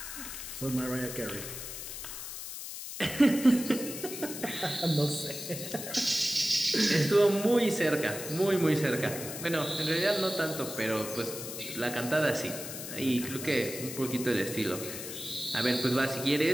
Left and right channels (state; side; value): noise; left; hiss, 8 dB below the sound